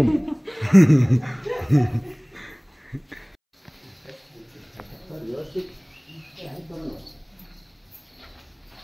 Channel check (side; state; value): both; identical; correlation 1.00